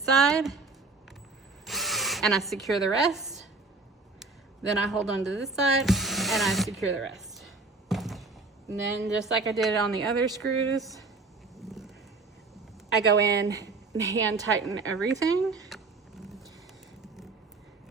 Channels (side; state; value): left; quieter; 3.7 dB